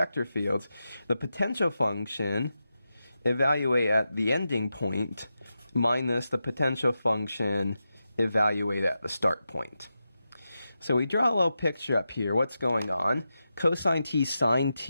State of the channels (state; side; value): inverted; both; correlation -0.90